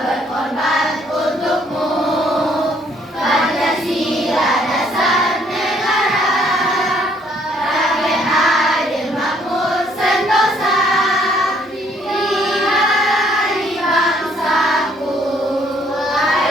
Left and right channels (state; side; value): normal; both; correlation 0.65